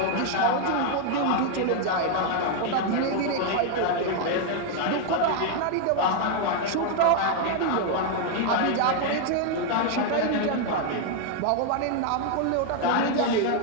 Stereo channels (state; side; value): different; both; correlation 0.00